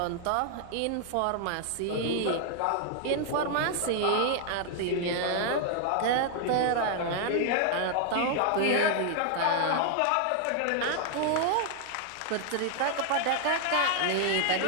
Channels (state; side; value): different; both; correlation 0.00